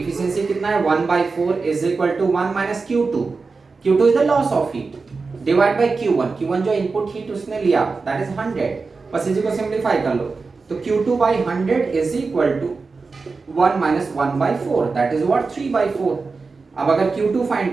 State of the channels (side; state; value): left; quieter; 4.3 dB